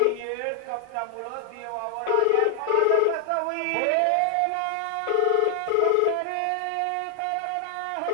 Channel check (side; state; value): both; different; correlation 0.00